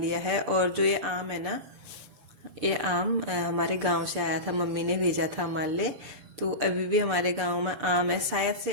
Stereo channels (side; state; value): left; late; 6.8 ms